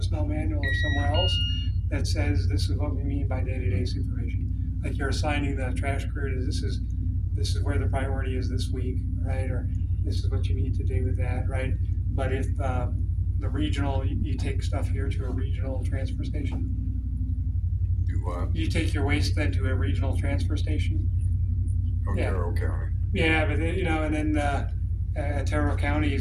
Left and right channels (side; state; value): both; identical; correlation 1.00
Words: manual or somewhere else that says, this is what we mean by day-to-day supervision. Like you're assigning the trash crew to, this is where the priority is this week, right? Or this is what you need to do with that, right? But if, the regional, you take stuff here to a regional transfer station. Do what? You take your waste then to a regional transfer station. Yeah. Otero County. Yeah, but then, and then Otero County